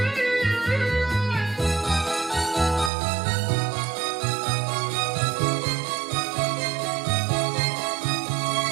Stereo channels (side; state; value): left; drops out; at 2.9 s